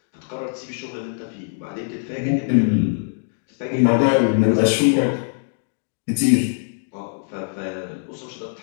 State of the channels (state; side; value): silent; right; 64 dB below the other